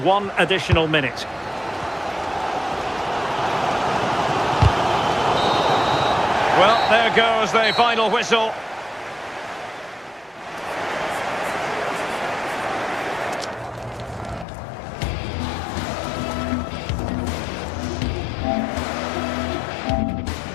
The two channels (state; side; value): drops out; right; at 14.5 s